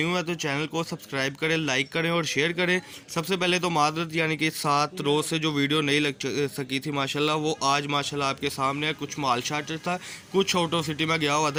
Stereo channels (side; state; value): both; identical; correlation 1.00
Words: है तो चैनल को सब्सक्राइब करें, लाइक करें और शेयर करें। सबसे पहले तो मादरत, यानी कि 7 रोज़ से जो वीडियो नहीं लग सकी थी माशाल्लाह, वो आज माशाल्लाह आपके सामने है। कुछ माल शार्टेज था, कुछ आउट ऑफ सिटी में गया हुआ